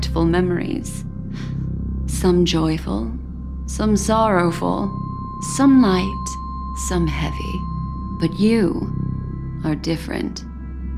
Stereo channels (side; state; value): both; identical; correlation 1.00